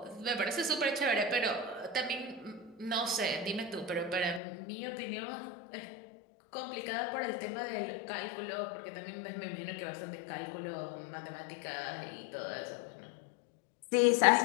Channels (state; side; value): drops out; right; at 4.4 s